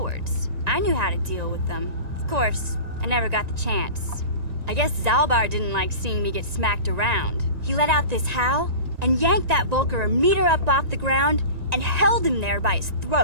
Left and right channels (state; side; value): late; left; 1.9 ms